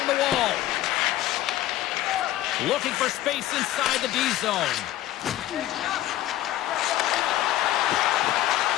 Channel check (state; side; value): quieter; right; 14.2 dB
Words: the wall. Looking for space inside the D zone.